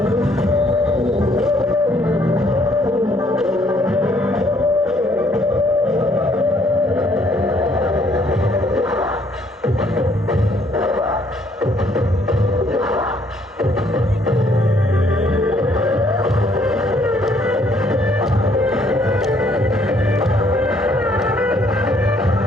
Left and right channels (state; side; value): normal; both; correlation 0.65